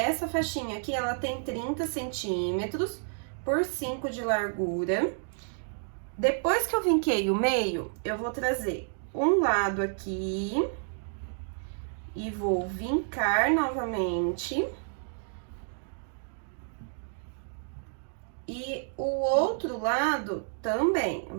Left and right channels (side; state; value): left; silent; digital silence